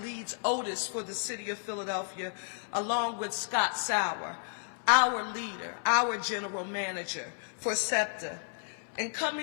Otis for the city of Philadelphia, along with Scott Sauer, our leader, our general manager for SEPTA, and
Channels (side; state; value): right; silent; 56 dB below the other